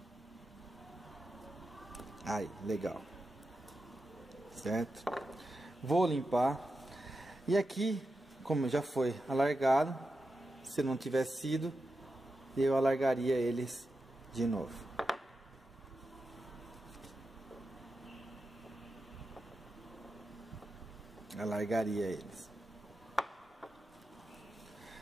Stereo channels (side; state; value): both; normal; correlation 0.89